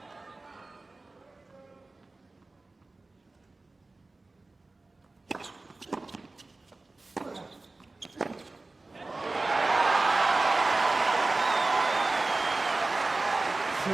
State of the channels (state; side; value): quieter; left; 3.2 dB